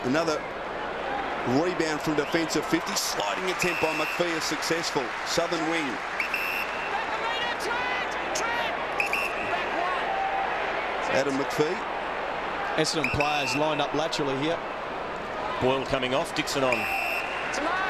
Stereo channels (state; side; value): identical; both; correlation 1.00